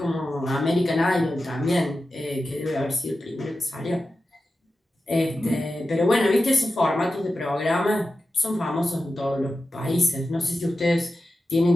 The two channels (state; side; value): normal; both; correlation 0.92